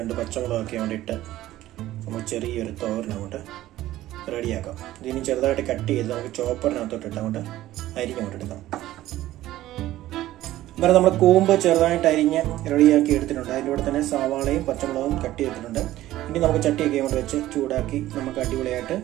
പച്ചമുളകൊക്കെ വേണ്ടിയിട്ട് നമ്മൾ ചെറിയൊരു തോരൻ അങ്ങോട്ട് റെഡിയാക്കാം. ഇതിന് ചെറുതായിട്ട് കട്ട് ചെയ്ത് നമുക്ക് ചോപ്പറിനകത്തോട്ടിട്ട് അങ്ങോട്ട് അരിഞ്ഞുകൊണ്ടെടുക്കാം. അന്നേരം നമ്മൾ കൂമ്പ് ചെറുതായിട്ട് അരിഞ്ഞ് റെഡിയാക്കി എടുത്തിട്ടുണ്ട്. അതിൻ്റെ കൂടെ തന്നെ സവാളയും പച്ചമുളകും കട്ട് ചെയ്തിട്ടുണ്ട്. ഇനി നമുക്ക് ചട്ടിയൊക്കെ കൊണ്ട് വെച്ച് ചൂടാക്കി നമുക്ക് അടിപൊളിയായിട്ട്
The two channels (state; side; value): quieter; left; 15.0 dB